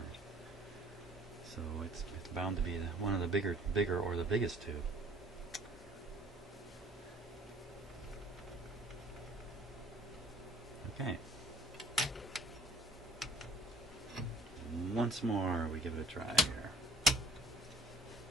So it's bound to be one of the bigger or the biggest tube. Okay. Once more, we give it a try here.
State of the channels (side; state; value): both; normal; correlation 0.52